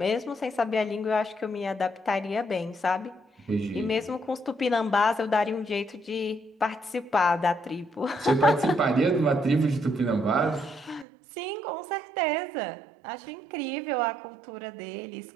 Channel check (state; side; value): drops out; left; at 11.1 s